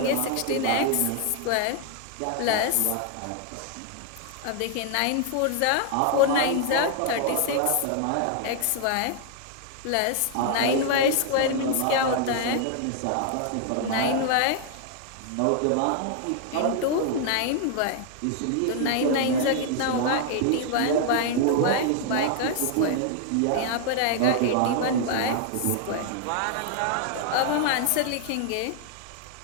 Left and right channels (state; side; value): different; both; correlation 0.00